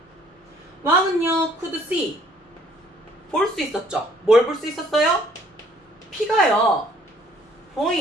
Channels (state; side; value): normal; both; correlation 0.60